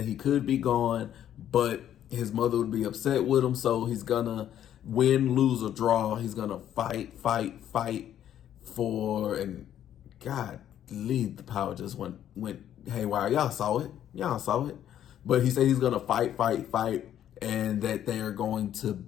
he could be gone, but his mother would be upset with him. So he's gonna win, lose, or draw. He's gonna fight for, and God, the power just went haywire. Y'all saw it. But he said he's gonna fight, and that they are going to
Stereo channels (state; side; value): quieter; right; 10.7 dB